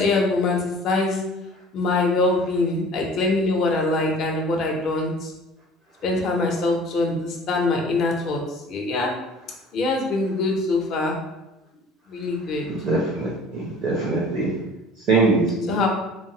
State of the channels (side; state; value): both; normal; correlation 0.47